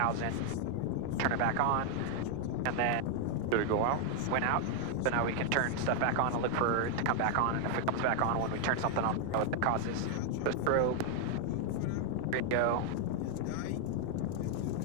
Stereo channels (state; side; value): different; both; correlation 0.00